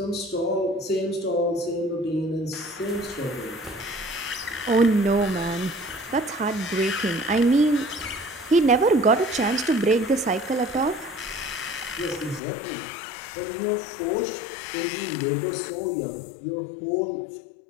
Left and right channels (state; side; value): drops out; right; at 12.4 s